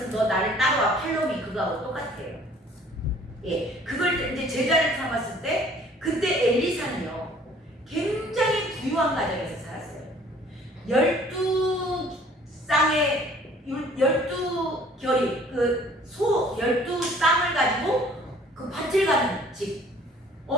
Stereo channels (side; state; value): both; normal; correlation 0.55